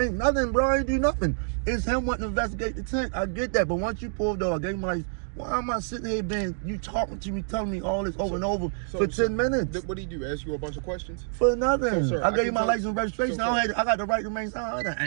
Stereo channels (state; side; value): silent; left; digital silence